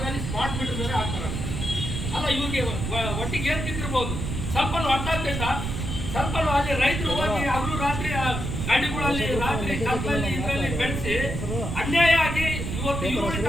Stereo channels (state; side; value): noise; right; rumble, 3 dB below the sound